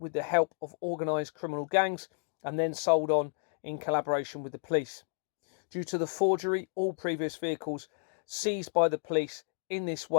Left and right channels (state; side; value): silent; right; digital silence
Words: the help of organised criminal gangs and then sold on in collaboration with the police. Due to the forgery, all previous vehicles seized by the police in this